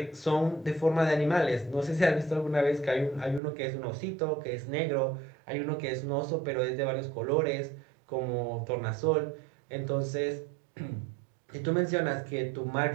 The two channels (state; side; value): drops out; left; at 3.4 s